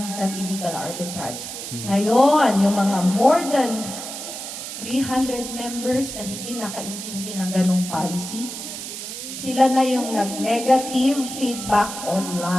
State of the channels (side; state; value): right; noise; hiss, 8 dB below the sound